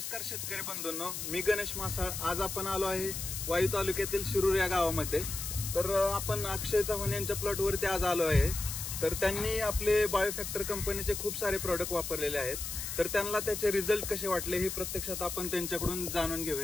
शेतकरी बंधूंनो, मी गणेश मासाळ. आज आपण आलो आहे वाई तालुक्यातील शिरूर या गावामध्ये. तर आपण अक्षय चव्हाण यांच्या प्लॉटवरती आज आलो आहे. तर त्यांनी आपले बायोफॅक्टर कंपनीचे खूप सारे प्रोडक्ट वापरलेले आहेत. तर त्यांना त्याचे रिझल्ट कसे वाटले हे प्रत्यक्षात आपण त्यांच्याकडून जाणून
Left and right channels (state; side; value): noise; left; hiss, 5 dB below the sound